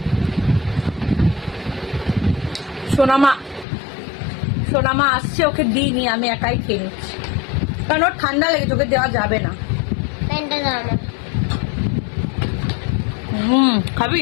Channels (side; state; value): right; drops out; at 3.7 s